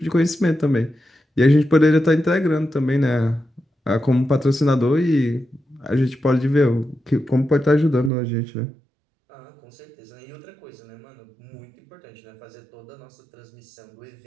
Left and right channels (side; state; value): left; drops out; at 8.1 s